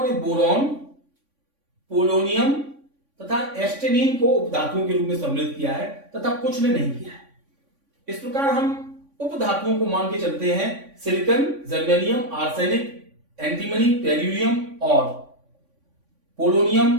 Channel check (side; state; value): left; late; 3.5 ms